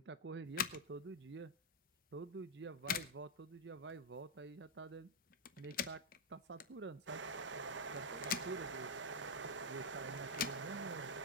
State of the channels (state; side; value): normal; both; correlation -0.01